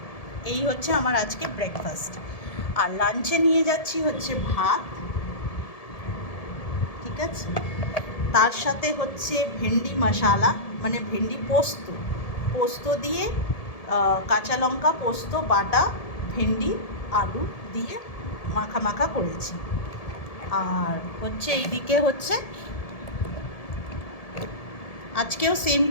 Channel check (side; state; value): right; late; 1.7 ms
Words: এই হচ্ছে আমার আজকে ব্রেকফাস্ট। আর লাঞ্চে নিয়ে যাচ্ছি হচ্ছে ভাত, ঠিক আছে, তার সাথে হচ্ছে ভেন্ডি মশালা, মানে ভেন্ডি পোস্ত, পোস্ত দিয়ে কাঁচা লঙ্কা পোস্ত বাটা, ভেন্ডি আলু দিয়ে মাখা মাখা করেছি। আর হচ্ছে এইদিকে হচ্ছে আজকেও সেম